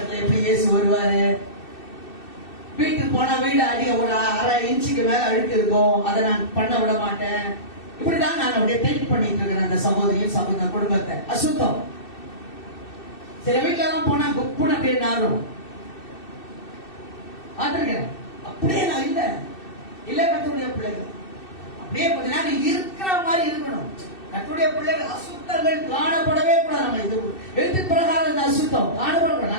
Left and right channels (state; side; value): late; right; 2.6 ms